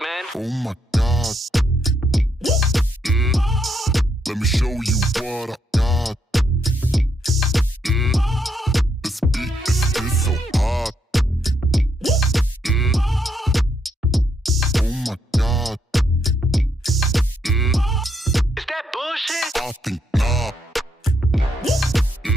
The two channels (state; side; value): normal; both; correlation 0.76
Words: man. Oh my God. Let me show you what I got. This beat is so hot. Oh my God. Is that bullshit? I think not.